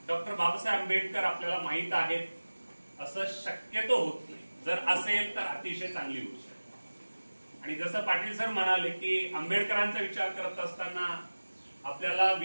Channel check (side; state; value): both; inverted; correlation -1.00